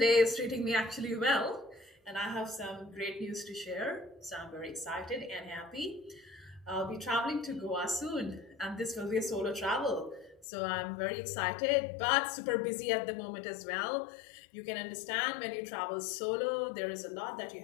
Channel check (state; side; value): drops out; right; at 10.5 s